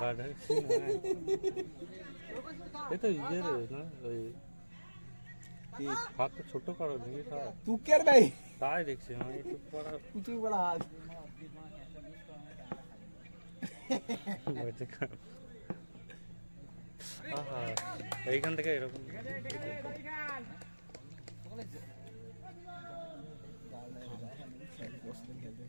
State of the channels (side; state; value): both; inverted; correlation -1.00